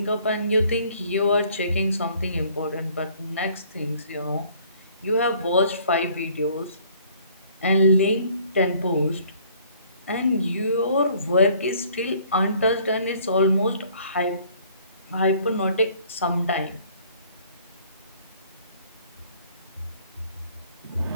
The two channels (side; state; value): both; inverted; correlation -0.58